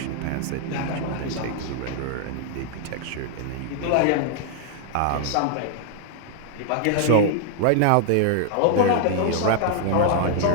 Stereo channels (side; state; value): both; different; correlation 0.00